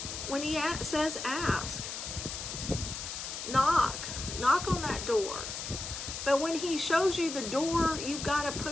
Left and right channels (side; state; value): left; noise; hiss, 6 dB below the sound